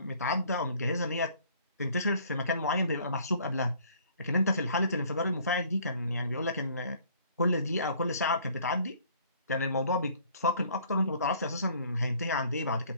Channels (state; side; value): inverted; both; correlation -0.57